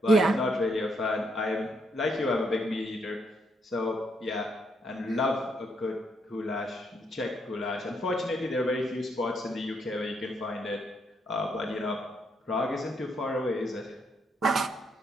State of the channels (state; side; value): normal; both; correlation 0.75